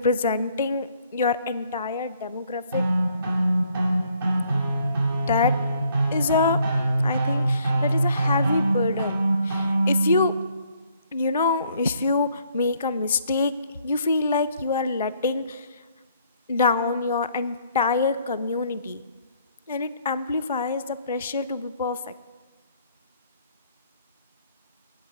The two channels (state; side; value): inverted; both; correlation -0.65